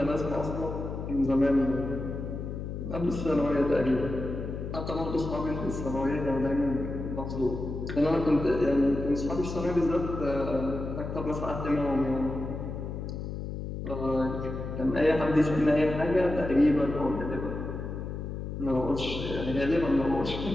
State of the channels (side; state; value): left; noise; hum, 6 dB below the sound